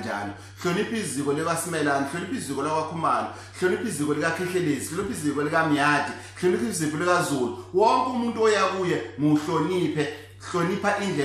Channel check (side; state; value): both; identical; correlation 1.00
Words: Hlonipha iziko likaSimelane, hlonipha iziko lakwaKhumalo, hlonipha iziko likaKhehlelezi, hlonipha iziko likaMyati, hlonipha iziko likaZulu. Wonke umuntu oya kuye muhloniphe, hlonipha